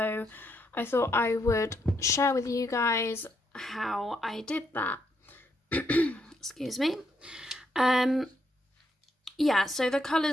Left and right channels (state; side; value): normal; both; correlation 0.77